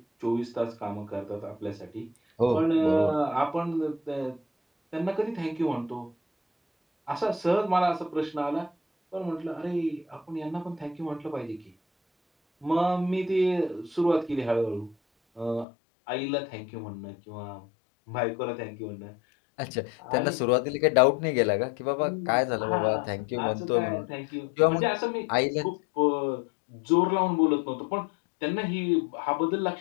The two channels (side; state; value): right; drops out; at 15.7 s